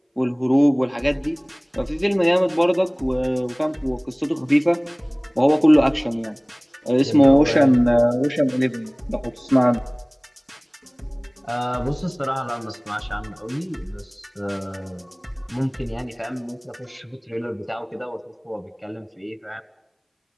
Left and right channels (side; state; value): both; identical; correlation 1.00